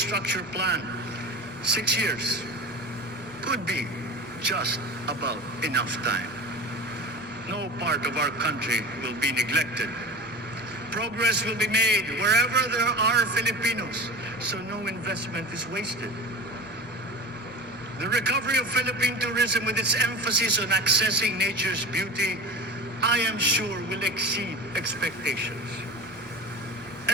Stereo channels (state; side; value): normal; both; correlation 0.31